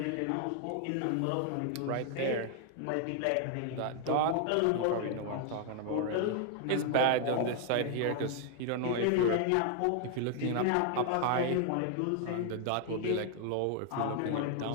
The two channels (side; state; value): both; different; correlation 0.00